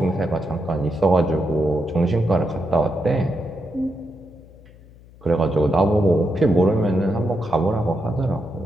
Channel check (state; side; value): noise; left; hum, 23 dB below the sound